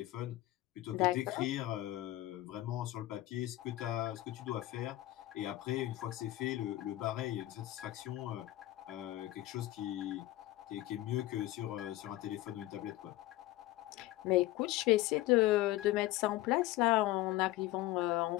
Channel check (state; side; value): quieter; right; 16.5 dB